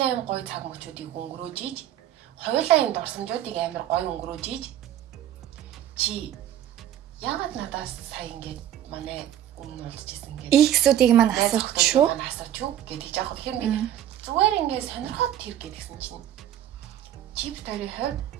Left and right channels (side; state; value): left; quieter; 11.4 dB